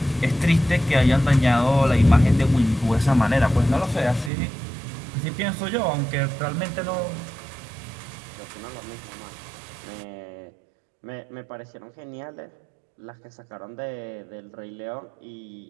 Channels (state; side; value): drops out; left; at 4.3 s